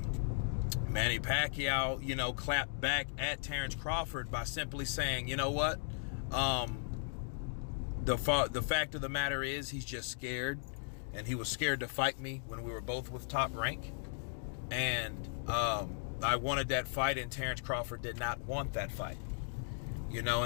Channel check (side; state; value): right; silent; digital silence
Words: Manny Pacquiao, clapped back at Terence Crawford by simply saying, you know what? The fact of the matter is he's just scared, and he was scared to fight me when we were both with Top Rank. And I wanted that fight, and Terence Crawford did not want that fight.